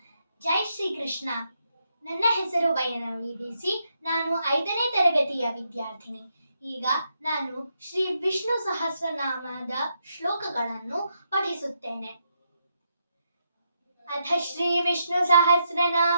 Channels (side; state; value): both; inverted; correlation -0.80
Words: ಜೈ ಶ್ರೀ ಕೃಷ್ಣ. ನನ್ನ ಹೆಸರು ವೈನವಿ ಬಿಸಿ. ನಾನು 5ನೇ ತರಗತಿಯ ವಿದ್ಯಾರ್ಥಿನಿ. ಈಗ ನಾನು ಶ್ರೀ ವಿಷ್ಣು ಸಹಸ್ರನಾಮದ ಶ್ಲೋಕಗಳನ್ನು ಪಠಿಸುತ್ತೇನೆ. ಅಥ ಶ್ರೀ ವಿಷ್ಣು